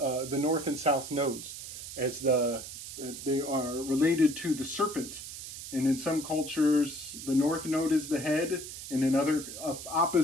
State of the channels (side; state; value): right; noise; hiss, 10 dB below the sound